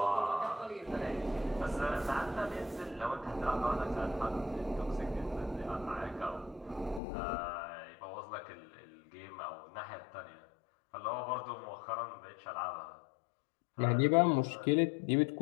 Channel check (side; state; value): right; drops out; at 7.0 s